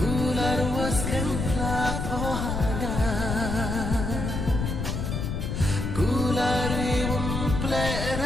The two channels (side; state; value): left; noise; rumble, 2 dB below the sound